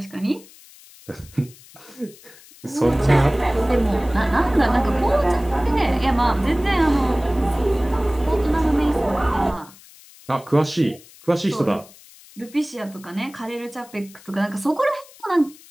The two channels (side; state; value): left; noise; hiss, 23 dB below the sound